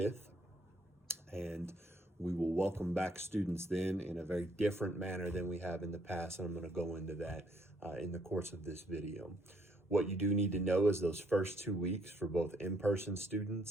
and we will welcome back students then in a very different manner than we have in the past, and I'm going to go into that in the course of this video. What you do need to know is those first 2 weeks for both in-person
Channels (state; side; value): normal; both; correlation 0.68